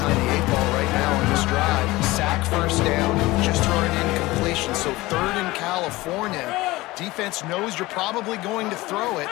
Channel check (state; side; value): quieter; right; 19.8 dB